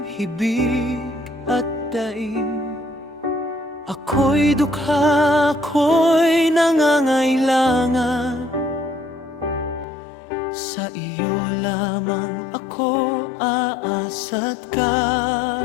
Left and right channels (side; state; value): right; drops out; at 9.9 s